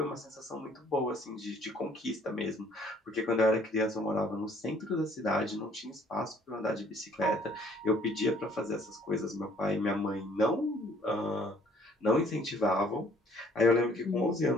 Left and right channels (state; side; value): normal; both; correlation 0.59